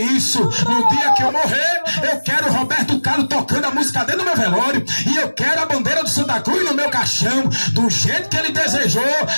isso. No dia que eu morrer, eu quero Roberto Carlos tocando a música dele no meu velório, e eu quero a bandeira do Santa Cruz no meu caixão. Do jeito que ele desejou,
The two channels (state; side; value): inverted; both; correlation -1.00